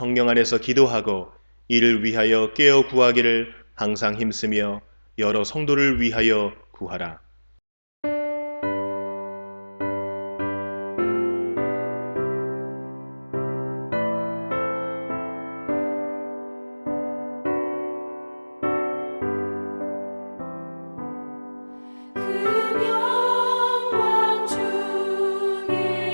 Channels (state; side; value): inverted; both; correlation -1.00